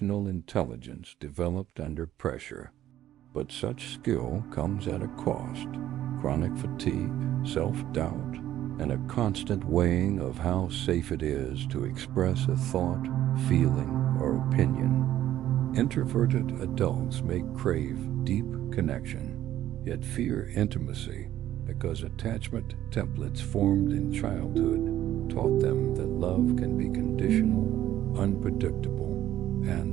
intelligence developed under pressure. But such skill comes at a cost: chronic fatigue, self-doubt, and a constant weighing of how safe it is to express a thought, feeling, or opinion. Introverted adults may crave deep connection, yet fear intimacy because attachment templates formed in childhood taught them that love can be conditional, unpredictable,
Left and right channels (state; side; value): quieter; left; 12.6 dB